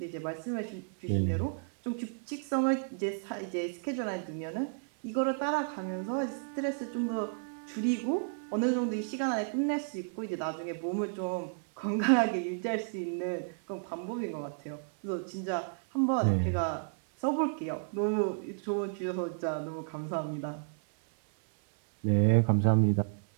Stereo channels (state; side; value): silent; left; 56 dB below the other